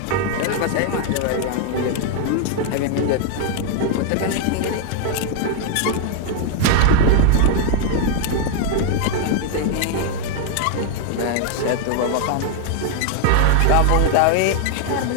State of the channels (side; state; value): both; different; correlation 0.00